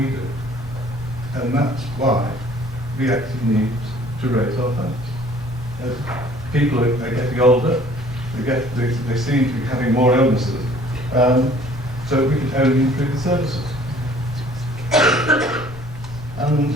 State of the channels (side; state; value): left; noise; rumble, 17 dB below the sound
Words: do. And that's why we actually need to raise our funds. As people are getting older, they seem to be having more illnesses, so we can only improve the services.